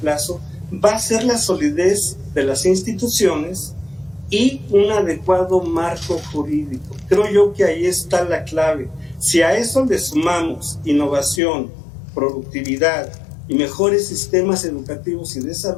va a ser la solidez de las instituciones y un adecuado marco jurídico. Creo yo que ahí está la clave. Si a eso le sumamos innovación, productividad y mejores sistemas educativos y de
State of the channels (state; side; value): drops out; right; at 11.4 s